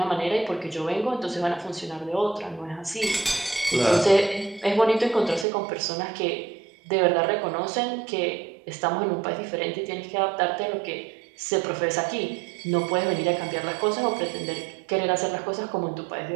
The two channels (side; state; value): left; drops out; at 5.5 s